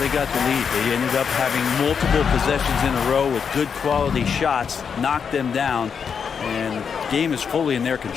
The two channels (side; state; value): right; quieter; 6.6 dB